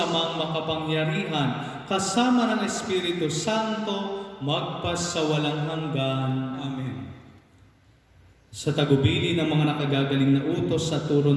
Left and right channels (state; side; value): identical; both; correlation 1.00